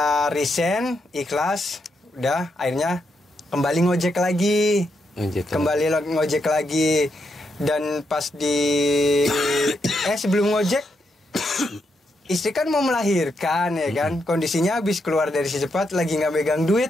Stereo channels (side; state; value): both; normal; correlation 0.81